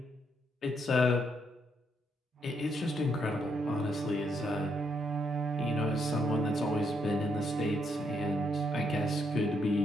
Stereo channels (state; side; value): normal; both; correlation 0.75